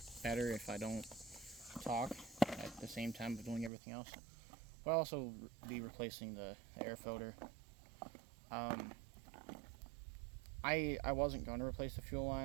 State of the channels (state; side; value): drops out; left; at 3.7 s